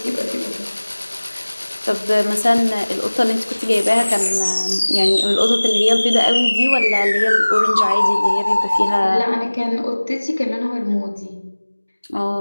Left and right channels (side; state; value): both; inverted; correlation -1.00